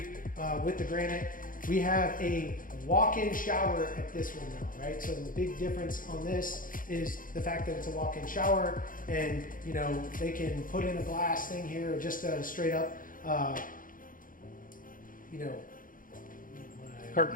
with the granite. We have a walk-in shower at this one now, right? So the big difference on this is the fact that it's a walk-in shower, and you know, they can put in a glass thing here, or just a straight up, you know,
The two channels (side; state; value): right; late; 0.40 ms